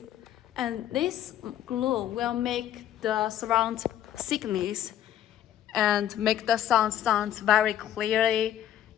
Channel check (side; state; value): right; quieter; 11.2 dB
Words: And this glue will make the surround thickness and make the sounds very clearly